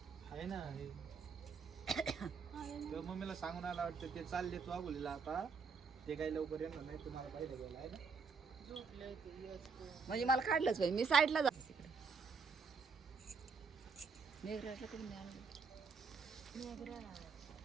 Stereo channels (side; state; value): left; quieter; 5.3 dB